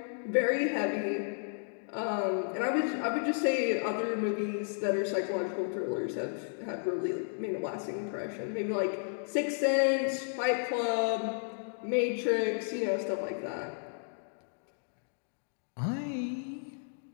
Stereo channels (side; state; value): right; silent; digital silence